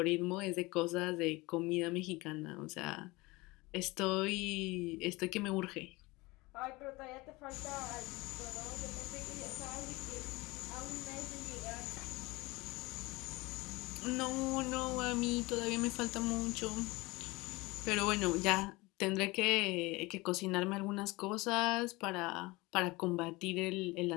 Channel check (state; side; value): quieter; right; 22.7 dB